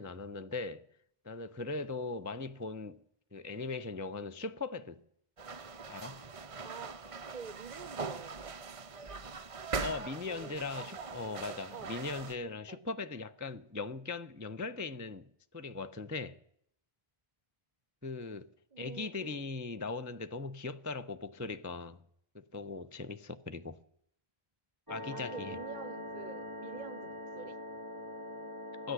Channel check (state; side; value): late; left; 1.5 ms